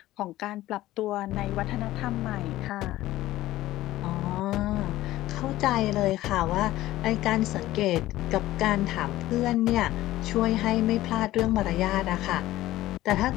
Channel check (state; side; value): quieter; right; 15.8 dB